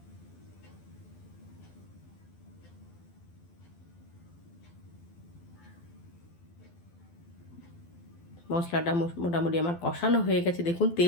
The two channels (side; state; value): right; late; 12 ms